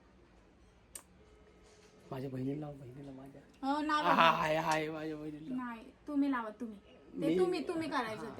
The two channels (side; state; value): both; identical; correlation 1.00